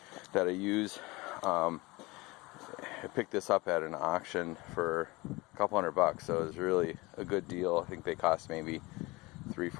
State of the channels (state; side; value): quieter; right; 22.9 dB